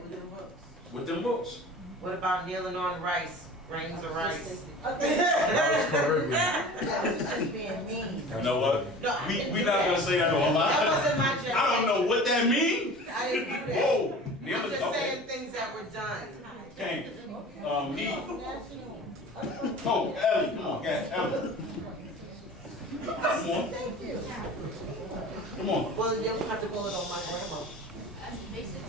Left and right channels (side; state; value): both; normal; correlation 0.39